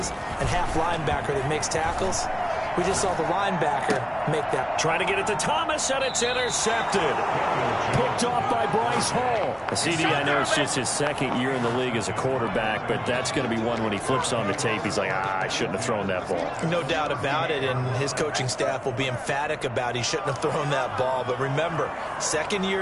and half linebacker that makes tackles. We just saw the linebacker make that. Trying to get it to Thomas, and it's intercepted. Picked off by Bryce Hall. CD, I know it's just his 2nd year in the league as a quarterback, but that's going to be one when he flips on the tape. He's like, I shouldn't have thrown that ball. No doubt about it, and his coaching staff will be emphatic about he shouldn't have thrown that ball. But remember, 2nd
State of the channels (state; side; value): identical; both; correlation 1.00